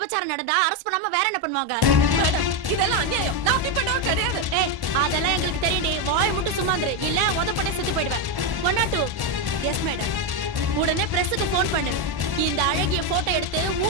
நடந்தா அரெஸ்ட் பண்ணாம வேற என்ன பண்ணுவாங்க? மேடம், இதெல்லாம் அநியாயம். நான் அப்படி பண்ணவே கிடையாது. ஏய், அதெல்லாம் எங்களுக்கு தெரியும்டி. வாயை மட்டும் சும்மாந்துரு, இல்ல உதப்பட்டே செத்து போயிடுவேன். 102. Yes madam. உடனே பிரஸ்ஸுக்கு ஃபோன் பண்ணு. இந்த அழகிய போட்டோ எடுத்து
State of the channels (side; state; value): left; late; 1.1 ms